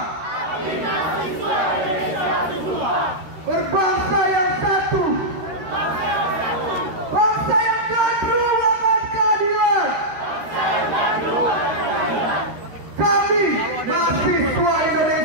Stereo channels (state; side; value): late; left; 13 ms